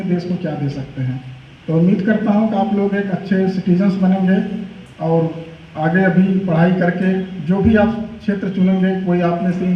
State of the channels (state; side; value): identical; both; correlation 1.00